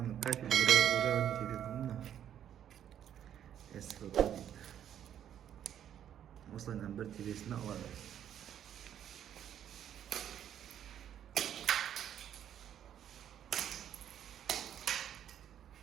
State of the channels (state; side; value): quieter; left; 10.0 dB